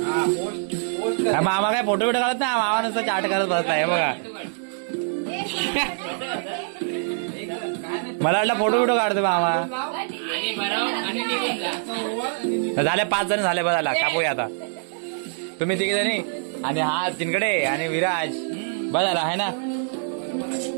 मामा काय फोटो बिटो काढत नाही, मामा नुसतं चाट करत बसलाय बघा. मला वाटलं फोटो बिटो काढतो मामा. झाले 5 जण झाले, बघा कापूया आता. तुम्ही 3 जणी आणि हा तिनकडे आणि विराज बघायला आहे ना.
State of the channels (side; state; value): left; silent; digital silence